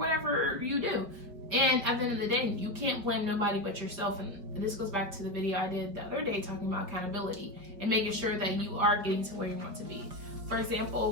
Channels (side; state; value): left; late; 4.8 ms